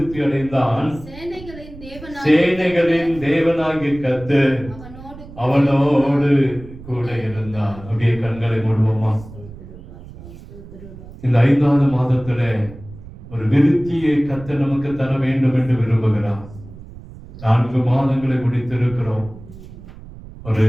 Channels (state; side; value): noise; right; rumble, 16 dB below the sound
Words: அடைந்தான். சேனைகளின் தேவனாகிய கர்த்தர் அவனோடு கூட இருந்தான். அப்படியே கண்களை மூடுவோமா. இந்த 5வது மாதத்துல ஒரு விருத்தியை கர்த்தர் நமக்கு தர வேண்டும் என்று விரும்புகிறார். 4 மாதங்களை முடித்திருக்கிறோம். ஒரு